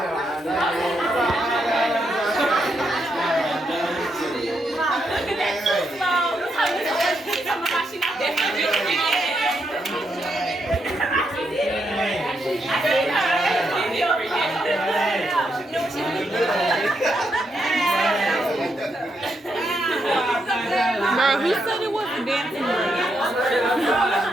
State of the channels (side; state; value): both; normal; correlation 0.80